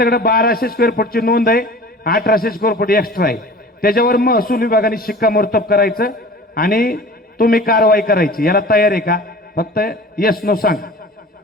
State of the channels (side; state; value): both; normal; correlation 0.41